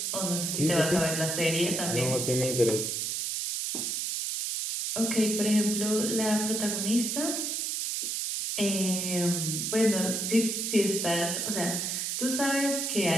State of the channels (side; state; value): right; noise; hiss, 1 dB below the sound